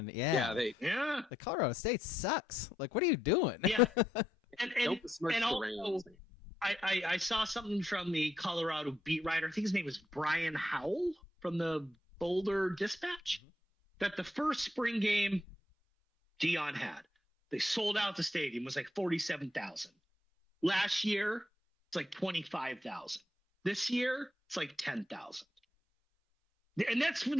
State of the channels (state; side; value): normal; both; correlation 0.78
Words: the Colorado State sucks. Like, what are you doing? Yeah, and also, I saw something from the Colorado beat writer. I think his name was Brian Howell from the Boulder Dispatch. That the first spring game Deion had, they sold out the stadium. It was like 47,000. Last year, it's like 25,000. This year, it's like 10,000. And this